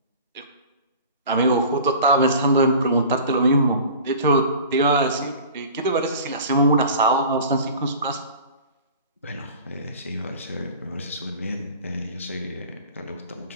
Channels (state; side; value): inverted; both; correlation -0.41